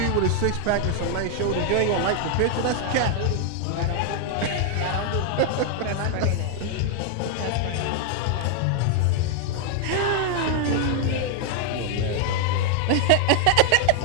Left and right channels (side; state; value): both; different; correlation 0.00